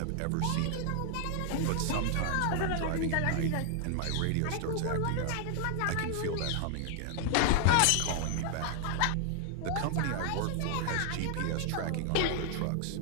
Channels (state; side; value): different; both; correlation 0.00